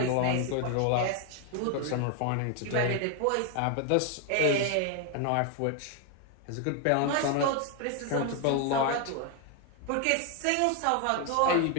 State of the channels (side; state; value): both; different; correlation 0.01